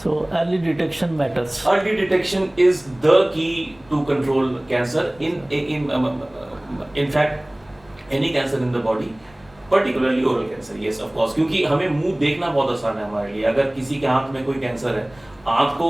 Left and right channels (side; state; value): left; noise; rumble, 28 dB below the sound